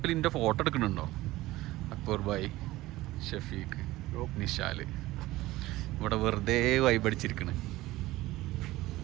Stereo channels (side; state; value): left; quieter; 17.7 dB